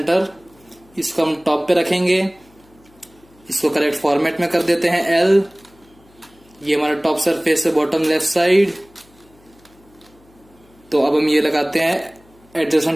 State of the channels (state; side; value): noise; left; hum, 29 dB below the sound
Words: इसको हम टॉप पे रखेंगे, इसको करेक्ट फॉर्मेट में कर देते हैं L। ये हमारा टॉप सरफेस है, बॉटम लेफ्ट साइड। तो अब हम ये लगाते हैं